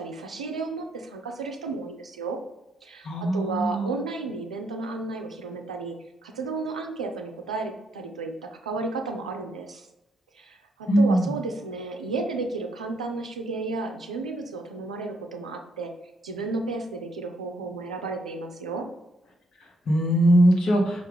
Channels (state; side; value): normal; both; correlation 0.74